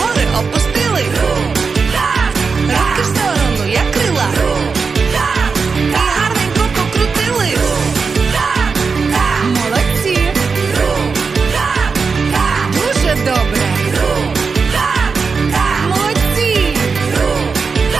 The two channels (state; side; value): quieter; left; 5.0 dB